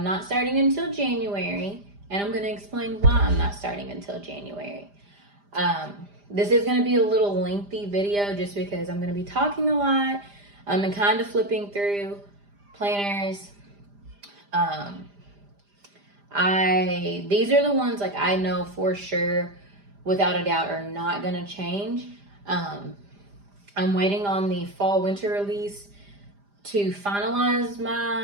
not starting until January, and I'm going to explain why I'm not starting until January. This is going to be a little lengthy video just because I'm going to be talking a lot and kind of flipping through planners. These are the ones like I know for sure, without a doubt, are not gonna change. I'm waiting on the fall winter release to finalize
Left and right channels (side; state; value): left; late; 5.0 ms